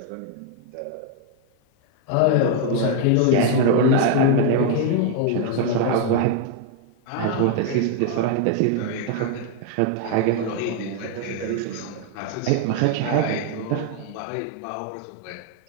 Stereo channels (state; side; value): different; both; correlation 0.00